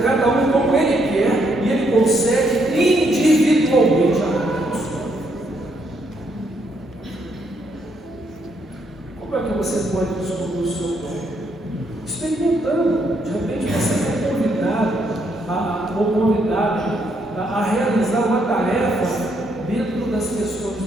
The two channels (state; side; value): normal; both; correlation 0.74